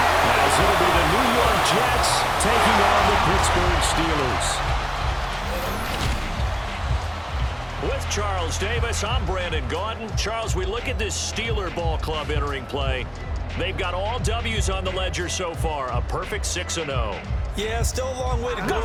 as it'll be the New York Jets taking on the Pittsburgh Steelers. With Charles Davis, I'm Brandon Gaudin. Charles, we look at this Steeler ball club entering play. They've got all W's on the ledger so far, a perfect 6-0. Yeah, still a long way to go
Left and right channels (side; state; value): both; identical; correlation 1.00